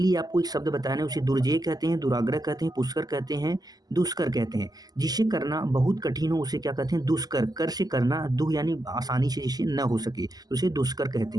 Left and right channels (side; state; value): left; late; 0.19 ms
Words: आपको एक शब्द बताना है। उसे दुर्जेय कहते हैं, दुराग्रह कहते हैं, पुष्कर कहते हैं, दुष्कर कहते हैं। जिसे करना बहुत कठिन हो उसे क्या कहते हैं, दुष्कर। कर से करना, दुह यानी आसानी से जिसे न हो सके, तो उसे दुष्कर कहते